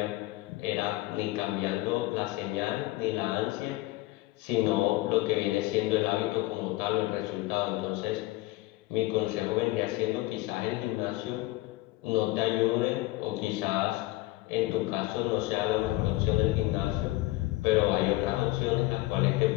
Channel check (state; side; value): quieter; right; 18.8 dB